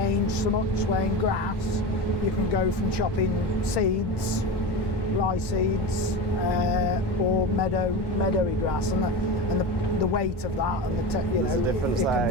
so much. Where in grass, you can go from chopping seeds, rye seeds, or meadowy grass, and the weight of that, and you know, it can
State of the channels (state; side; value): late; right; 1.1 ms